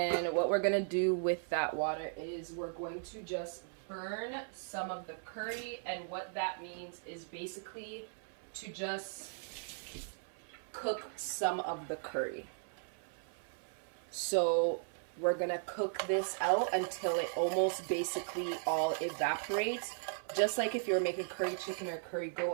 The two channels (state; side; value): silent; left; 53 dB below the other